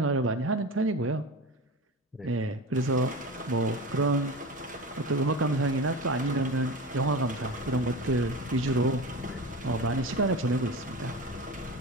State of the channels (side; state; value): both; normal; correlation 0.29